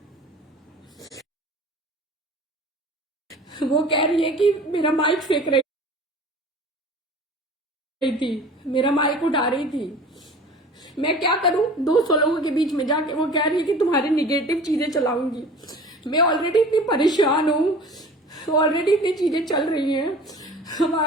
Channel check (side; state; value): both; normal; correlation 0.42